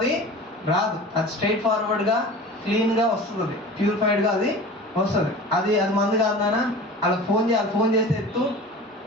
రాదు. అది స్ట్రైట్ ఫార్వర్డ్గా క్లీన్గా వస్తుంది, ప్యూరిఫైడ్గా అది వస్తుంది. అది మంది కాదు నాన్న, వాళ్ళకి ఫోన్ చేస్తే ఎత్తు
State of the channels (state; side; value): normal; both; correlation 0.37